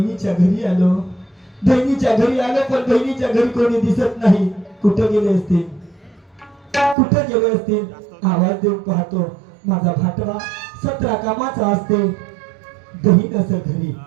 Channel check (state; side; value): drops out; left; at 7.0 s